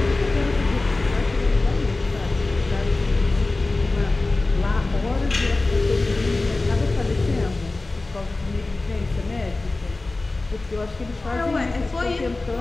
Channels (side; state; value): right; quieter; 3.2 dB